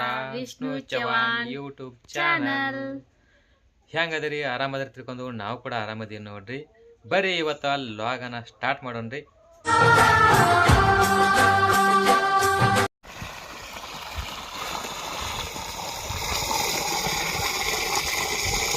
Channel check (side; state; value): both; identical; correlation 1.00